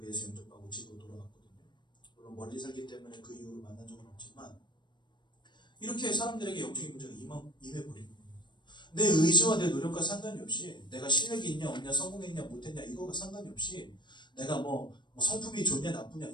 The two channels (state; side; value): late; right; 0.22 ms